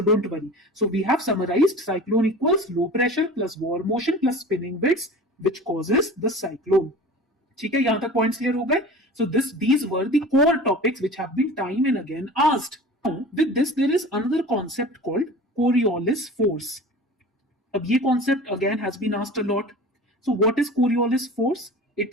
don't worry. So we have summarized cyclone equals low pressure plus warm motion plus spinning winds which causes the cyclone. ठीक है, यहां तक points clear हो गए. So these were the core topics which have been time and again asked. With this, there is another concept called Coriolis force. अब ये concept again has been asked a lot. So what is Coriolis force? It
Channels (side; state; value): both; normal; correlation 0.38